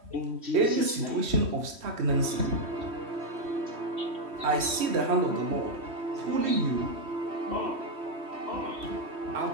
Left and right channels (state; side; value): late; left; 3.1 ms